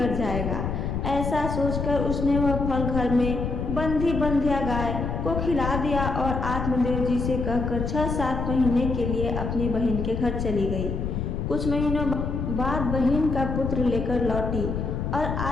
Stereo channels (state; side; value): noise; left; rumble, 2 dB below the sound